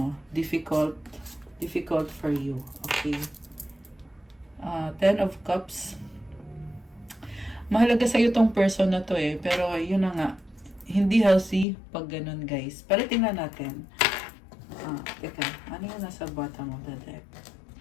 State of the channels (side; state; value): right; drops out; at 11.7 s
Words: difficult for you. Okay. Ten of Cups. Mahalaga sa'yo tong person na to pero yun na nga, hindi healthy pag ganun guys. Pero tingnan natin. Teka, ano yung nasa bottom of the deck?